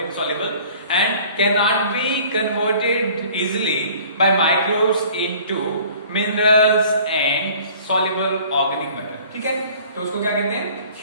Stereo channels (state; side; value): inverted; both; correlation -0.51